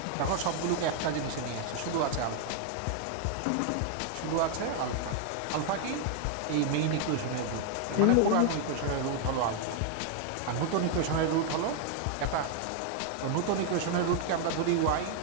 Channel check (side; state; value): both; different; correlation 0.00